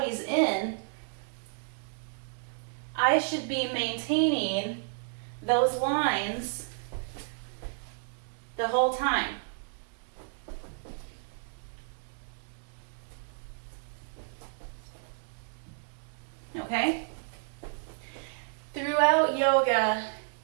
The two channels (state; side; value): silent; left; digital silence